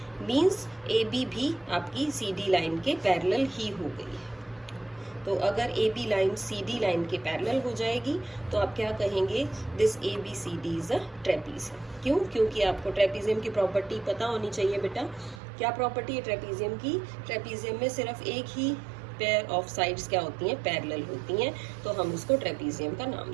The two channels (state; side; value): drops out; left; at 15.4 s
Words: मींस AB भी आपकी CD लाइन के पैरेलल ही हो गई है। तो अगर AB लाइन CD लाइन के पैरेलल हो जाएगी तो आप क्या कहेंगे, this ABCD is a trapezium. क्यों, क्योंकि आपको ट्रेपीजियम की प्रॉपर्टी पता होनी चाहिए बेटा। क्या प्रॉपर्टी है ट्रेपीजियम की, ट्रेपीजियम में सिर्फ एक ही पेयर ऑफ साइड्स क्या होती हैं, पैरेलल होती हैं, तो हम उसको ट्रेपीजियम का नाम